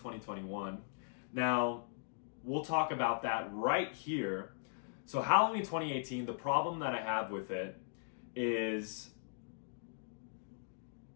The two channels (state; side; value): silent; right; digital silence